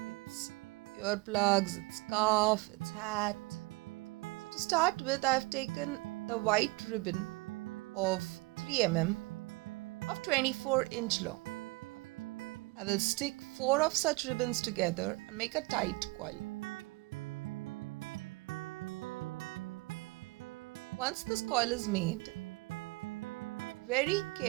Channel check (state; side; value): quieter; left; 24.8 dB